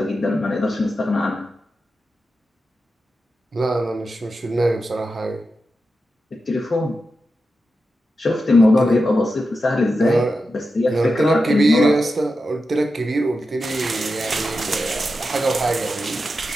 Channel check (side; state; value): both; normal; correlation 0.90